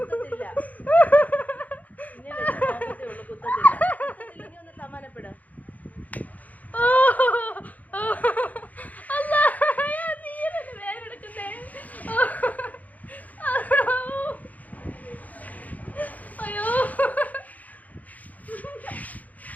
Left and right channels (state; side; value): late; right; 0.077 ms